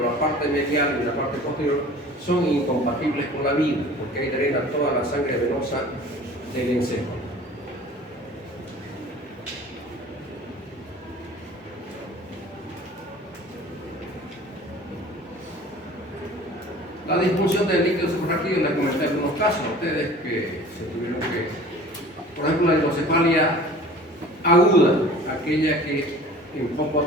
la parte medial y la parte posterior son incompatibles con la vida, porque ahí drena toda la sangre venosa del encéfalo. La disfunción del líquido suprarraquídeo, les comenté algunos casos a ustedes que se tuvieron que, por ejemplo, la hidrocefalia aguda, aquella que en poco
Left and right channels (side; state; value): both; normal; correlation 0.44